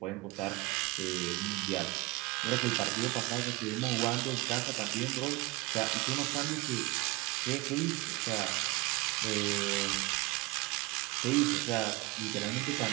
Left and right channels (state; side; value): quieter; left; 22.7 dB